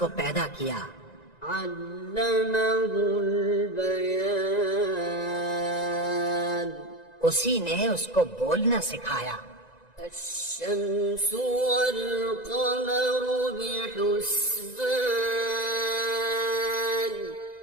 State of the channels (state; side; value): late; right; 1.9 ms